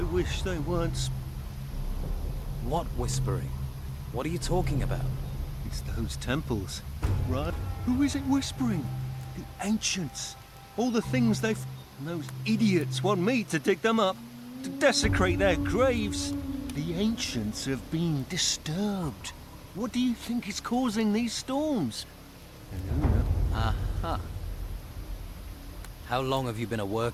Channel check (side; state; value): both; identical; correlation 1.00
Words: wish they weren't. What whispering? What are you talking about? It's those temples, right? Who is it whispering? The ancients. All the things they've... And those idiots want me to dig them up, to desecrate their graves. The ancients have been disturbed. What do you think is causing these storms? Aha. How long have you been at